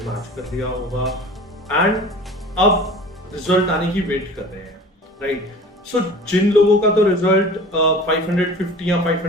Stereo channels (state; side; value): normal; both; correlation 0.42